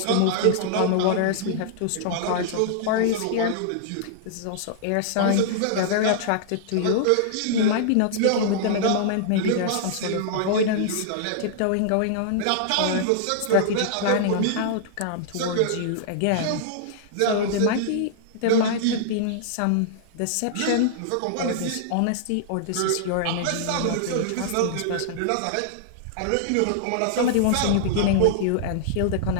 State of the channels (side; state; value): both; different; correlation -0.01